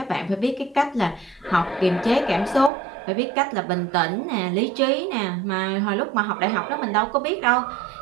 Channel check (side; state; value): left; drops out; at 2.7 s